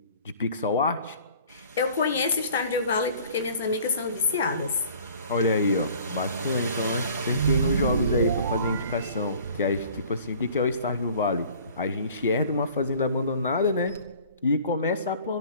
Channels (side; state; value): both; inverted; correlation -0.50